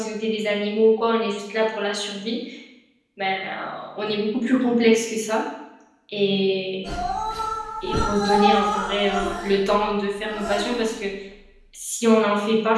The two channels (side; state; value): both; identical; correlation 1.00